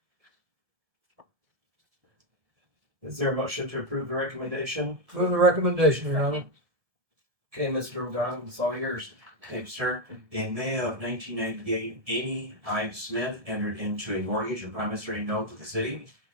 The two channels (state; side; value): late; left; 1.7 ms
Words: Is there a motion to approve the recommendation? Move the recommendation, Your Honor. Okay, Mr. O'Donnell, it's all yours. Thank you, sir. In May of 1998, Amy I. Smith entered into a mortgage and promissory note with the city.